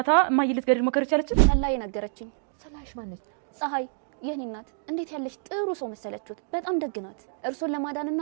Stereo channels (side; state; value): left; silent; digital silence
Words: እማዬን ልትገድል ሞከር ይቻለች? ሰላይ ነገረችኝ። ሰላይሽ ማነች? ፀሐይ የኔ እናት እንዴት ያለች ጥሩ ሰው መሰለችሁት። በጣም ደግናት። እርሶን ለማዳንና